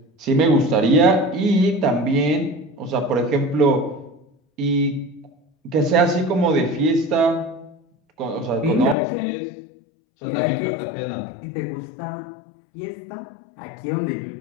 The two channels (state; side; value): drops out; right; at 9.0 s